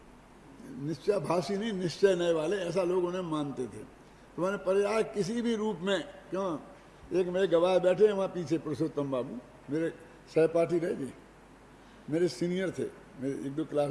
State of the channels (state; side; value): identical; both; correlation 1.00